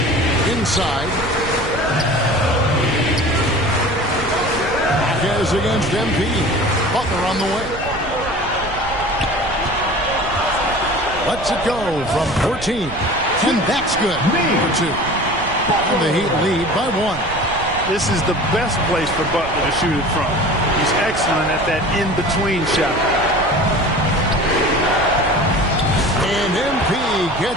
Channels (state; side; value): noise; right; rumble, 13 dB below the sound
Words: Inside. Marquez against Embiid. Butler on the way. Lets it go from 14. And that's good. For 2. And the Heat lead by 1. This is the best place for Butler to shoot it from. He's excellent at that in-between shot. And MP